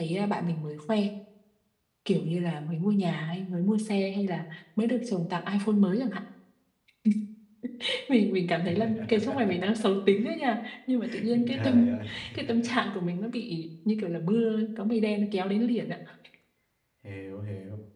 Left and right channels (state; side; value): identical; both; correlation 1.00